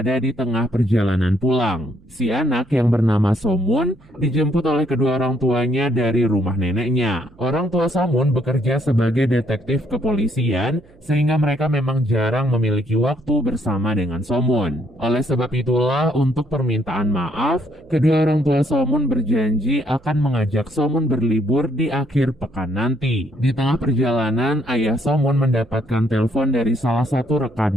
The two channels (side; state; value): right; noise; hum, 28 dB below the sound